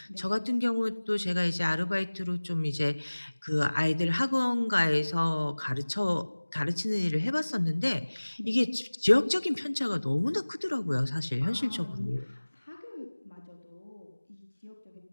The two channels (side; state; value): both; inverted; correlation -1.00